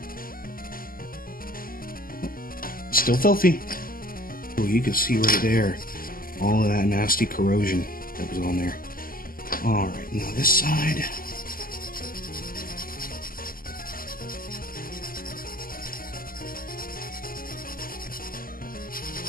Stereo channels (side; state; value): right; late; 0.42 ms